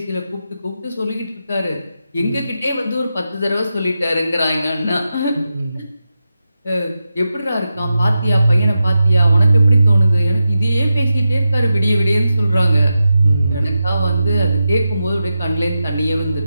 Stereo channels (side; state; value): both; inverted; correlation -0.90